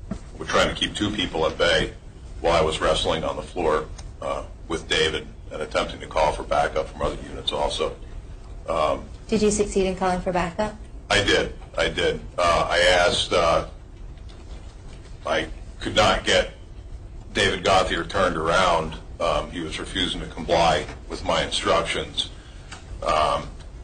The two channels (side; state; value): both; identical; correlation 1.00